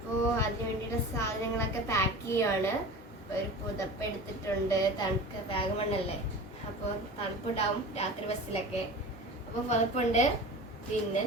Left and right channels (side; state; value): both; normal; correlation 0.35